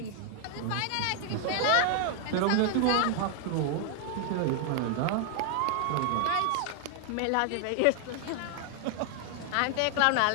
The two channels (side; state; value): both; different; correlation 0.00